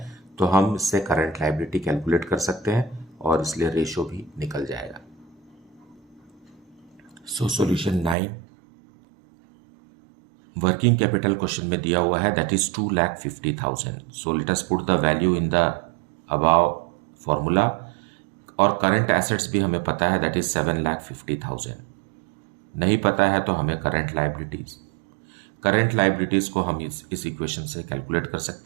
तो हम इससे करंट लायबिलिटी कैलकुलेट कर सकते हैं और इसलिए रेशियो भी निकल जाएगा. So solution 9, working capital question में दिया हुआ है that is 2,50,000. So let us put the value in the above formula. और करंट एसेट्स भी हमें पता है दैट इज 7,50,000. नहीं पता है तो हमें करंट लाइबिलिटीज को हम इस इक्वेशन से कैलकुलेट कर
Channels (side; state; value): left; drops out; at 8.2 s